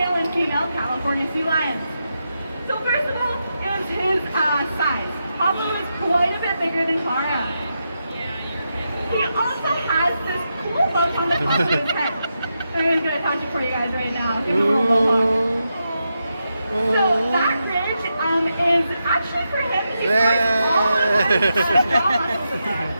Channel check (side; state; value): both; inverted; correlation -0.86